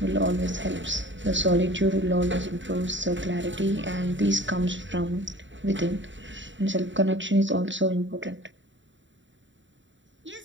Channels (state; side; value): late; left; 0.54 ms